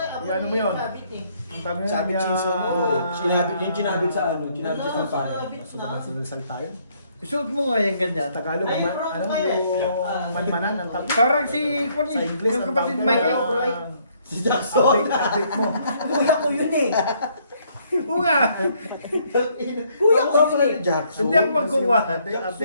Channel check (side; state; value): both; inverted; correlation -0.68